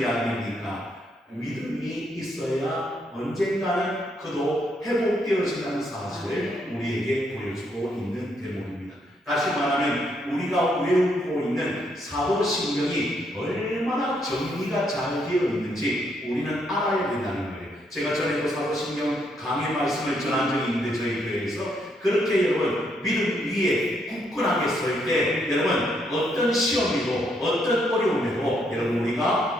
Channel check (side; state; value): both; normal; correlation 0.74